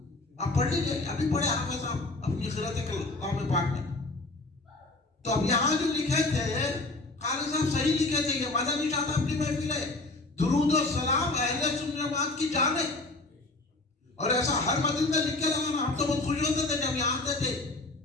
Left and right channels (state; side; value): quieter; right; 3.1 dB